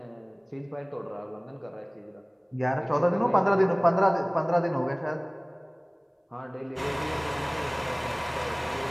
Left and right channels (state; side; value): identical; both; correlation 1.00